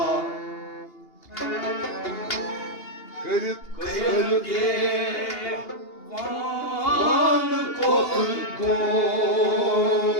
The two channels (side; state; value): right; late; 2.8 ms